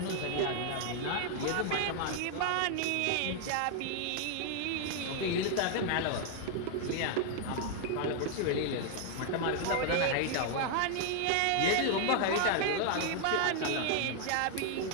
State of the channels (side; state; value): both; different; correlation 0.00